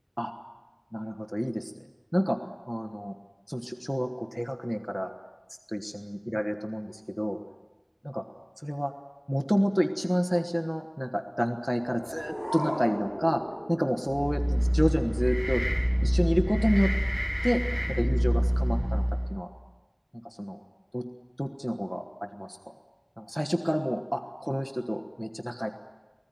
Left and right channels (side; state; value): both; identical; correlation 1.00